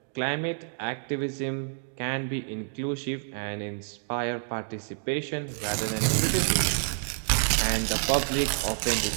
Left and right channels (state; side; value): silent; left; digital silence